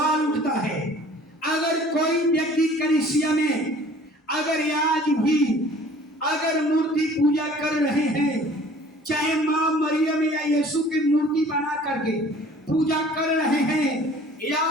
उठता है, अगर कोई व्यक्ति कलीसिया में अगर आज भी अगर मूर्ति पूजा कर रहे हैं, चाहे मां मरियम या यीशु की मूर्ति बना करके पूजा कर रहे हैं, या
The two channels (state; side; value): normal; both; correlation 0.50